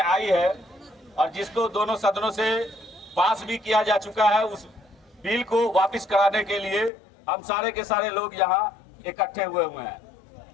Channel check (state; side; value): drops out; right; at 6.9 s